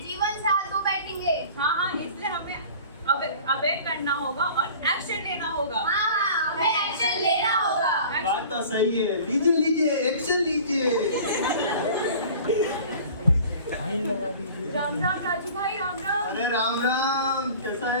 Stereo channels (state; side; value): inverted; both; correlation -0.44